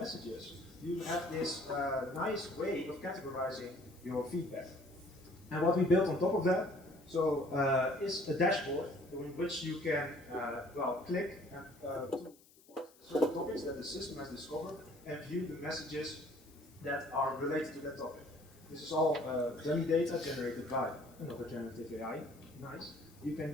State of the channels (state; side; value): noise; left; hiss, 27 dB below the sound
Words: you have this nice way of categorizing your feedback. And what we built on top of that, is a dashboard in which you can, click to certain topics that the system has discovered and view the messages that are related to that topic. This is all dummy data generated by another generative AI. Nice. You can